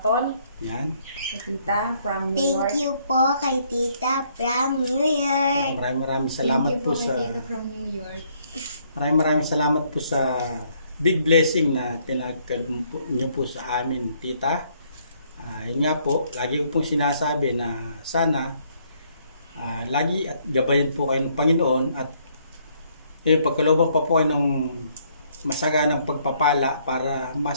Yan. Kay Tita from New York. Thank you po kay Tita from New York. Maraming salamat po sa from New York. maraming salamat po sa big blessing na pinagkaloob niyo po sa amin, Tita. Yun nga po, lagi ko pong sinasabi na sana lagi at gabayan po kayo ng Panginoon at pagkalooban pa po kayo ng masaganang pagpapala para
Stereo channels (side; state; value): both; inverted; correlation -0.68